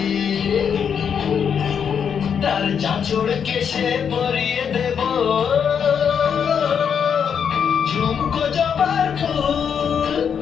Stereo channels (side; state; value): right; quieter; 7.4 dB